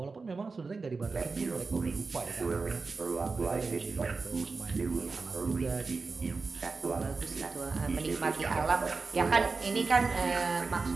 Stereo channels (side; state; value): left; quieter; 4.3 dB